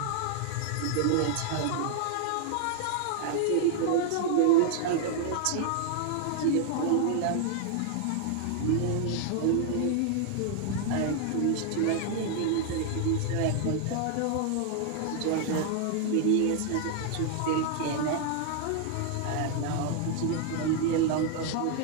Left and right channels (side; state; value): both; different; correlation 0.00